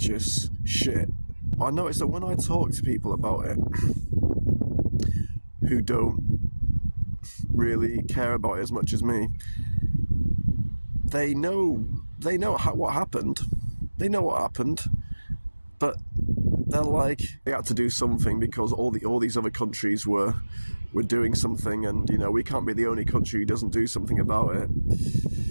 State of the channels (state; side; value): inverted; both; correlation -1.00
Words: shit. I noticed that when I talk to people about it who don't really care about it as much as me, they know what happened. They know what happened, but they're like, they had to do something because all these other countries were doing something, and you know, we can't be the only country who doesn't do something about it.